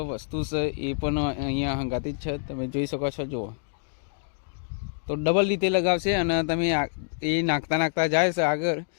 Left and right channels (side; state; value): right; silent; digital silence